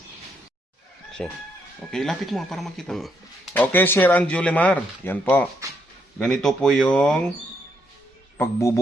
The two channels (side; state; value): both; normal; correlation 0.75